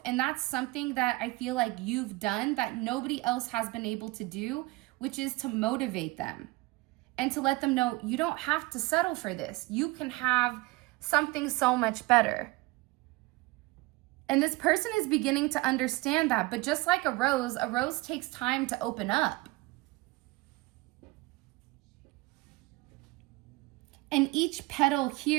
And that's something that I feel like you've done that nobody else has been able to do, which is to motivate them and to let them know you don't have to settle for this. You can have something so much better. And this person is beginning to understand that. But just like a rose takes time to open up. And each petal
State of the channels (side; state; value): left; quieter; 22.2 dB